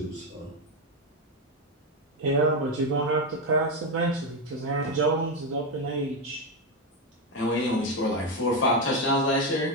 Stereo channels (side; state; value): both; normal; correlation 0.09